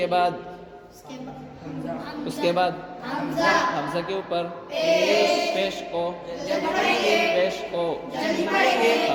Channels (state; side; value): identical; both; correlation 1.00